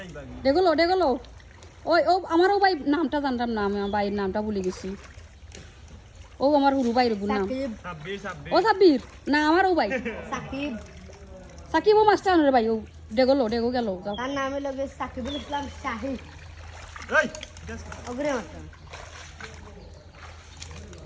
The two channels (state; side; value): identical; both; correlation 1.00